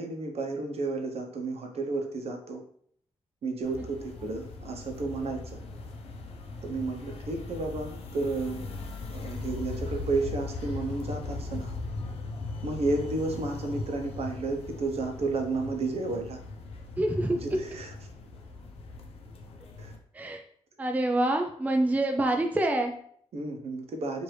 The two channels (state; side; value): normal; both; correlation 0.76